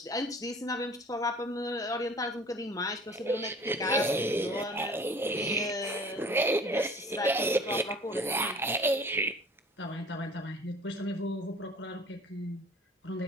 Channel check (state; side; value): normal; both; correlation 0.47